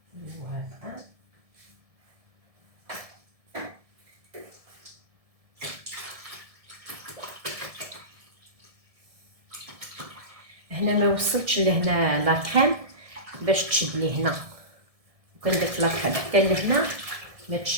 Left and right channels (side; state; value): left; late; 1.7 ms